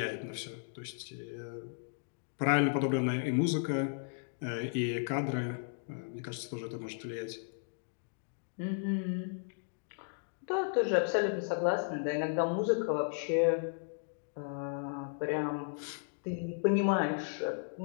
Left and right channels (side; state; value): right; silent; digital silence